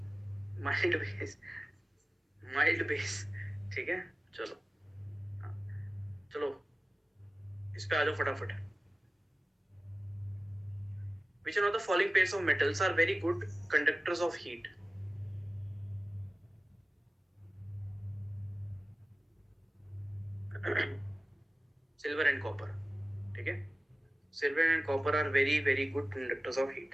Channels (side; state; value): both; normal; correlation 0.96